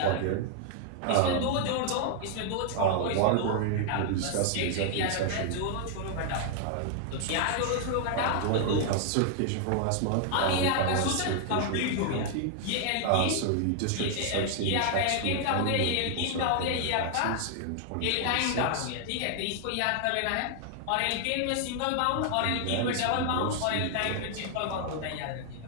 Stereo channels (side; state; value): both; different; correlation 0.00